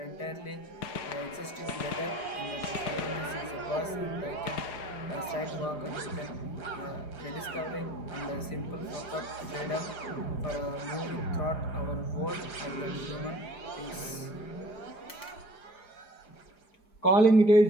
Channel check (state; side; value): late; right; 5.0 ms